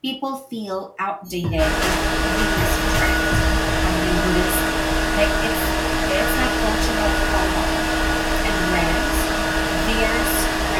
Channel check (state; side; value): identical; both; correlation 1.00